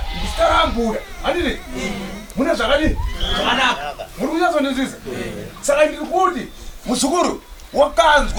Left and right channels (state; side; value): identical; both; correlation 1.00